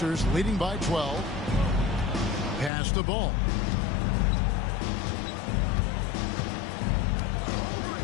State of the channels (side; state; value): right; drops out; at 2.7 s